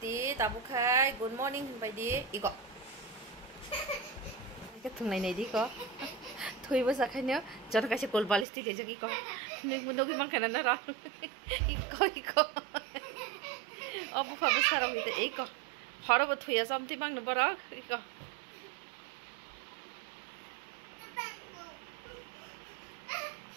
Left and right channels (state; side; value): drops out; left; at 8.5 s